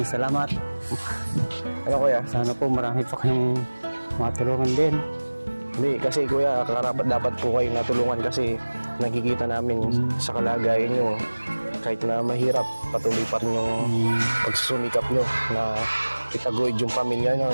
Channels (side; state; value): both; inverted; correlation -1.00